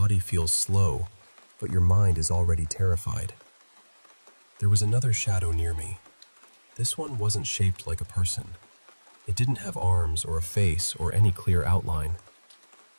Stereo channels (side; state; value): both; inverted; correlation -1.00